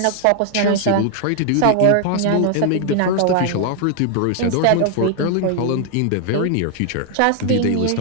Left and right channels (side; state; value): both; different; correlation 0.00